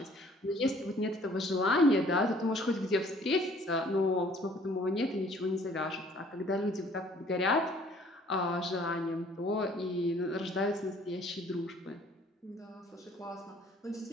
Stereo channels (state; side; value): normal; both; correlation 0.57